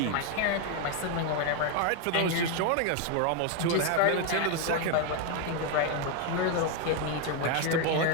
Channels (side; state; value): both; different; correlation 0.01